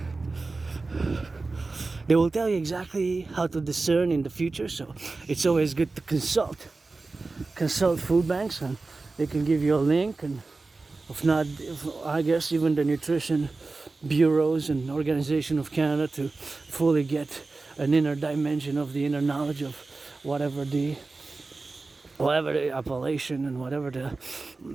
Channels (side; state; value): left; quieter; 3.6 dB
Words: They will tell you exactly how to discern in the future, so it's always good to consult food banks, and they can give you a link, and I guess even the nutrition bureaus and Organization of Canada, to fully get an inner dimension of the inner knowledge of whatever the appellation and whatever the